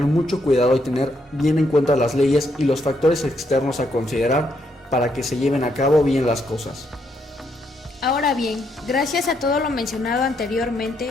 mucho cuidado y tener bien en cuenta las leyes y los factores externos a considerar para que se lleven a cabo bien las cosas. Ahora bien, gracias a todo lo mencionado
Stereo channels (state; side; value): normal; both; correlation 0.76